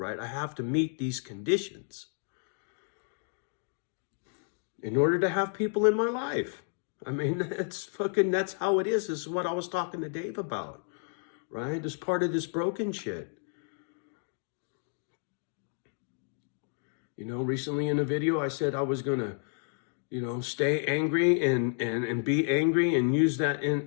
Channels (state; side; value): silent; right; 57 dB below the other